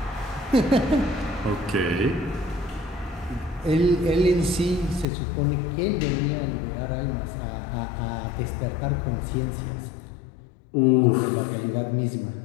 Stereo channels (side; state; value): right; drops out; at 5.1 s